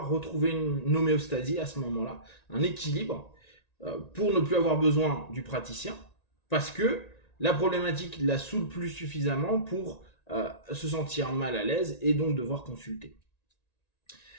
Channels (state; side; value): late; right; 1.9 ms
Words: retrouver une homéostasie à ce moment là, un équilibre pour ne plus avoir besoin du praticien parce que la problématique la saoule plus suffisamment pour se sentir mal à l'aise et donc devoir consulter.